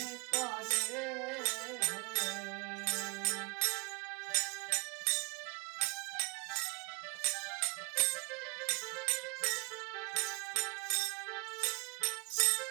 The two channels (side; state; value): left; quieter; 23.6 dB